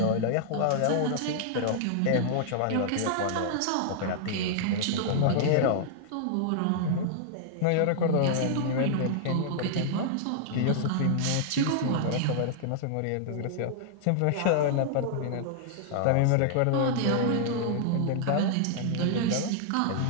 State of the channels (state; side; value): different; both; correlation -0.01